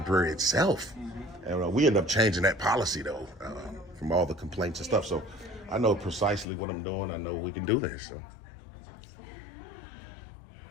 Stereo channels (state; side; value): drops out; right; at 6.5 s